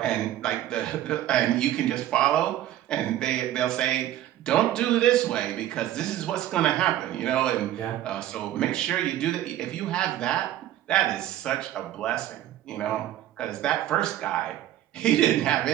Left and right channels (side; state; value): left; quieter; 12.9 dB